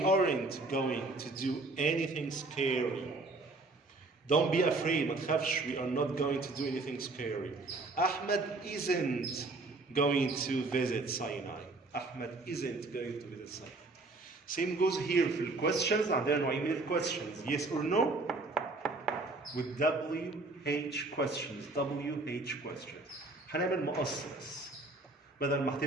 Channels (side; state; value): left; quieter; 3.2 dB